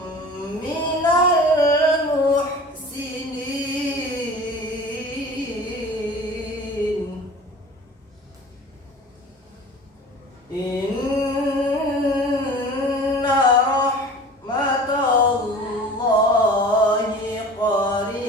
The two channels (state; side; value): normal; both; correlation 0.41